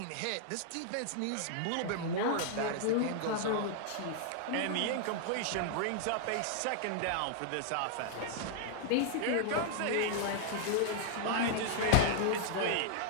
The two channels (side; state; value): both; different; correlation -0.01